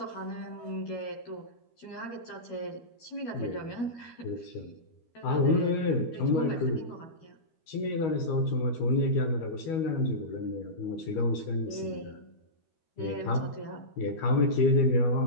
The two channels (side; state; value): right; late; 12 ms